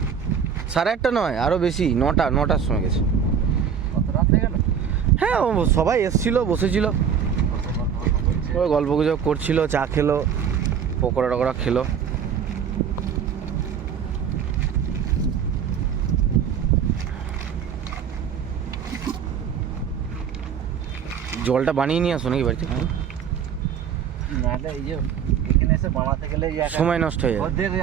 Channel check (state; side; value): quieter; left; 7.6 dB